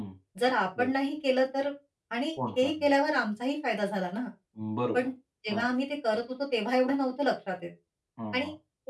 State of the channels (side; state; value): both; identical; correlation 1.00